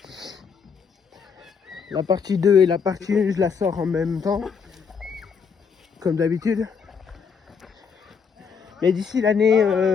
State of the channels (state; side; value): quieter; right; 6.1 dB